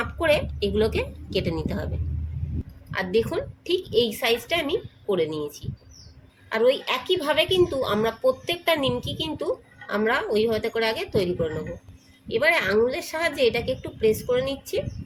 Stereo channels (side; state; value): both; identical; correlation 1.00